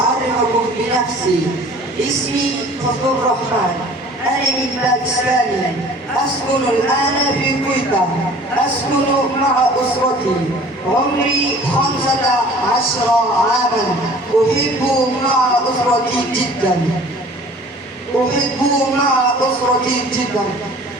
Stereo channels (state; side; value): normal; both; correlation 0.48